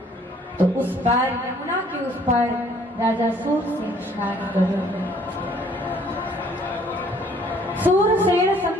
तो उस पार, यमुना के उस पार राजा सूरसेन स्नान करो। सूरसेन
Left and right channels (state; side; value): normal; both; correlation 0.60